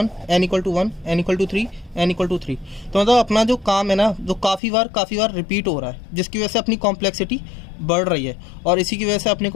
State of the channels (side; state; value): right; drops out; at 4.6 s